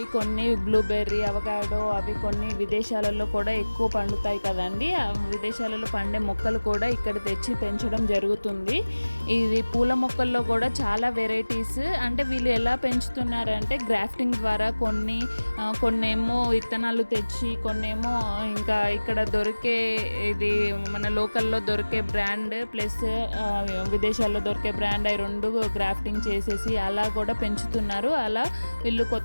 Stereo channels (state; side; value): inverted; both; correlation -1.00